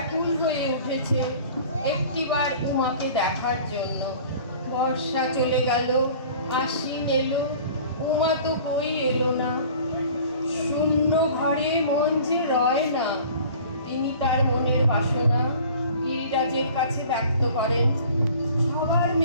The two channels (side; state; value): both; inverted; correlation -0.46